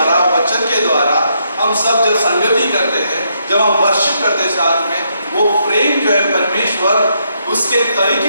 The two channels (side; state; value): both; inverted; correlation -0.76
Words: वचन के द्वारा हम सब जब संगति करते हैं, जब हम वर्शिप करते हैं साथ में, वो प्रेम जो है परमेश्वर उसके